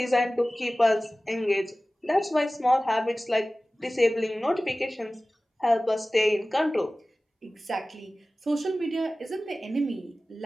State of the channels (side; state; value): both; normal; correlation 0.97